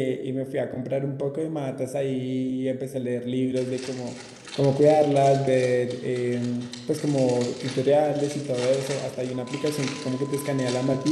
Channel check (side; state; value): both; identical; correlation 1.00